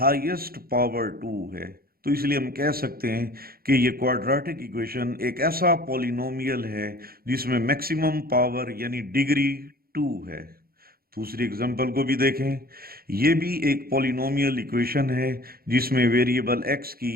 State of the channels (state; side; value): late; left; 0.44 ms